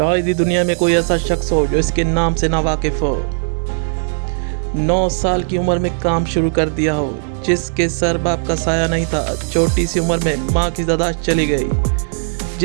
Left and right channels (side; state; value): left; silent; 68 dB below the other